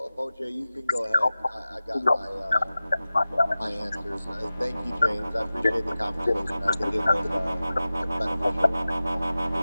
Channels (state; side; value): inverted; both; correlation -0.96